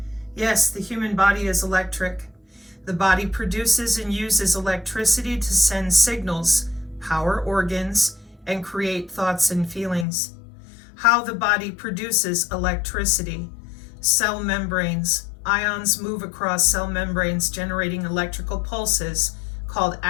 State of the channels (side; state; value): right; drops out; at 10.1 s